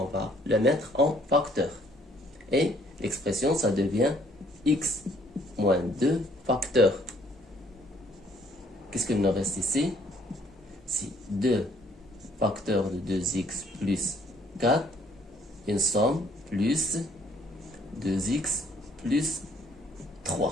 va le mettre en facteur. Et l'expression, ça devient x moins 2 facteur. Qu'est-ce qu'il nous reste ici? C'est 2 facteurs de 2x plus 4, une somme plus 2x plus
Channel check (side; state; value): both; normal; correlation 0.63